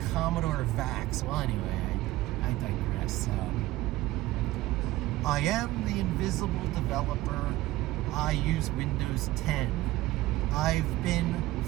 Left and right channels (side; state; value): left; quieter; 17.1 dB